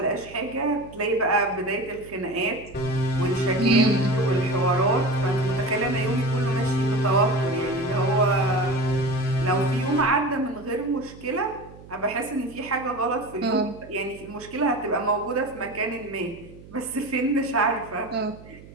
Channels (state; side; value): noise; right; hum, 19 dB below the sound